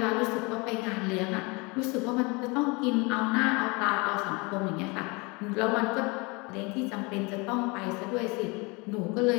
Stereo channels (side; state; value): right; quieter; 27.7 dB